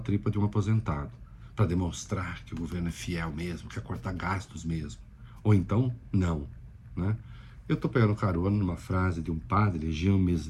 de um aposentado, para demonstrar que o governo é fiel mesmo, quer cortar gastos mesmo. Ou então, não. Né? Eu estou pegando carona numa frase de um padre, Jean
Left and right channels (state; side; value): identical; both; correlation 1.00